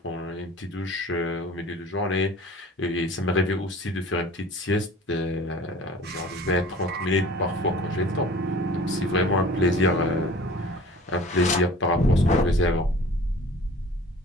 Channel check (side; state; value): both; normal; correlation 0.45